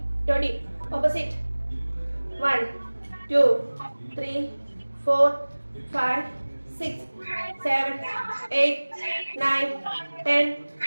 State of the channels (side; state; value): both; inverted; correlation -1.00